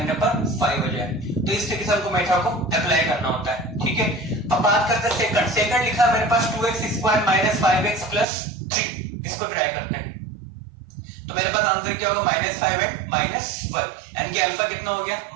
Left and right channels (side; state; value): left; drops out; at 8.2 s